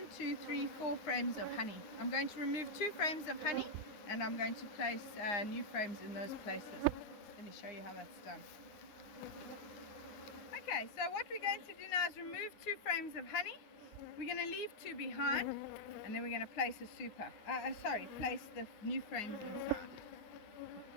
2, 3, 4 frames of honey. I'm going to remove 2 frames of honey, and I'm going to place new frames in those places. Let me show you how that's done. Okay, so what we're going to do now is remove 2 frames of honey. We're going to leave 2 behind, and then we're going to place a super. Place the new frames inside.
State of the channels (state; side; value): late; right; 9.7 ms